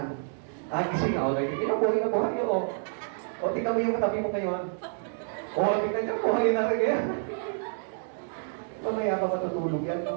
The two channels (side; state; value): left; silent; digital silence